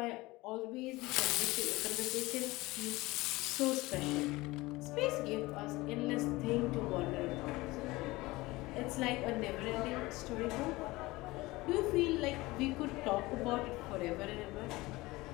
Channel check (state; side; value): quieter; right; 20.6 dB